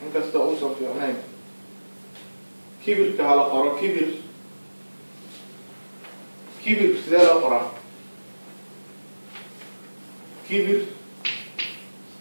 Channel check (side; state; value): both; inverted; correlation -1.00